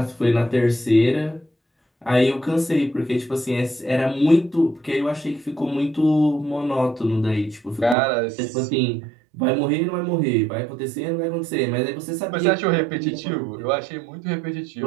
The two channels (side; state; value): left; drops out; at 8.0 s